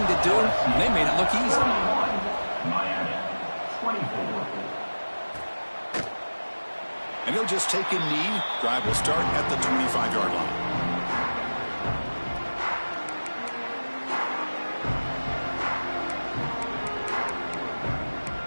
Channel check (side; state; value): both; inverted; correlation -1.00